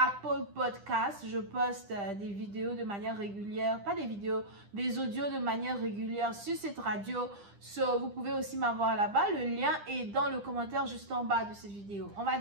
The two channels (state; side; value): late; left; 10 ms